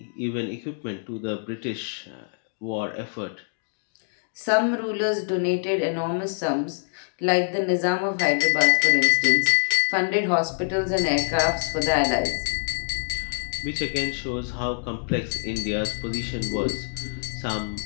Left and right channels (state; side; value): silent; right; digital silence